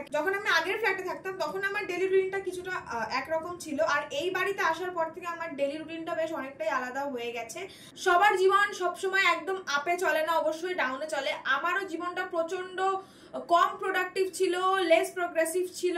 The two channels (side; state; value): both; identical; correlation 1.00